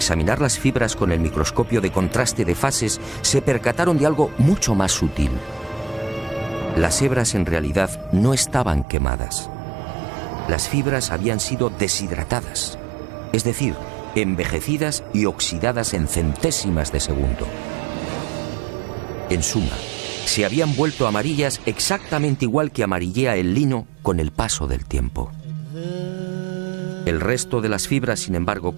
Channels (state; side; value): drops out; left; at 8.8 s